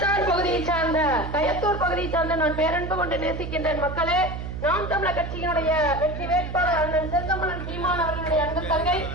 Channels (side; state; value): right; noise; hum, 6 dB below the sound